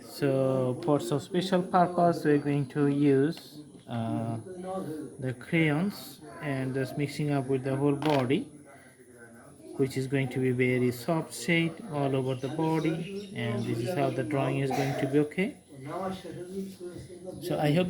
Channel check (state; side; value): identical; both; correlation 1.00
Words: so for some special purpose we're going to use the crayons and just mixing up with the whole body, which is going to be very soft shade all over the body, and this is how the drawing is going to be. Okay, so I hope